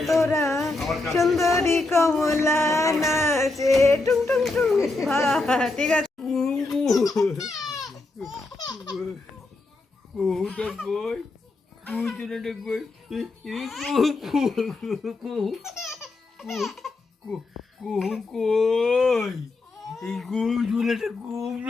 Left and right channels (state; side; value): quieter; right; 3.2 dB